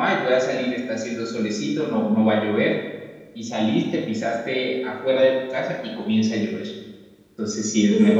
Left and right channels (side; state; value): both; identical; correlation 1.00